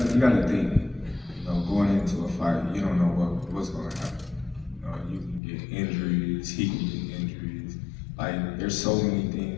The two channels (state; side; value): drops out; right; at 5.4 s